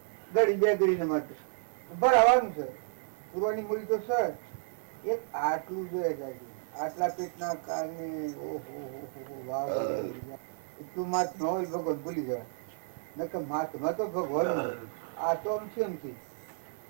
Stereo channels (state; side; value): silent; left; digital silence